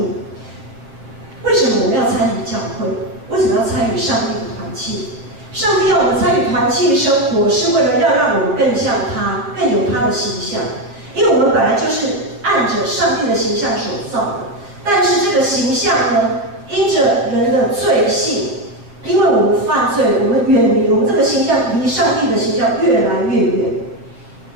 为什么我们要参与教会？为什么要参与上帝的团契？上帝要我们参与团契生活，是为了要让我们更像他，更有他的形象。因为我们本来就是按着上帝的形象所造的，但是这个形象呢，因着人的罪性，因为我们犯罪，我们远离，我们这个形象离上帝的形象越来越远，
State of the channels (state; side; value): late; left; 7.4 ms